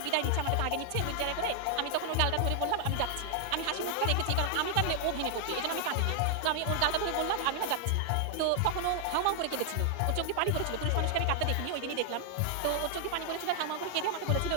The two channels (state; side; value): different; both; correlation 0.00